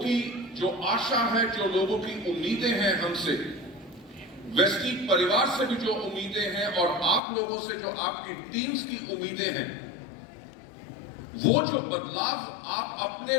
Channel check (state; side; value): drops out; right; at 7.2 s